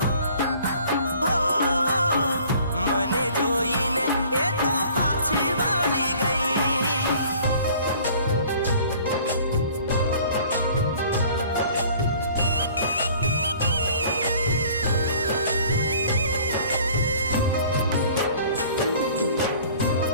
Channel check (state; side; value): inverted; both; correlation -0.52